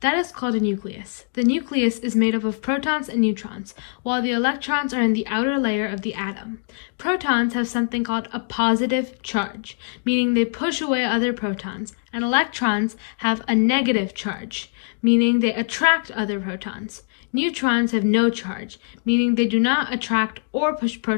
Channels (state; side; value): silent; right; 64 dB below the other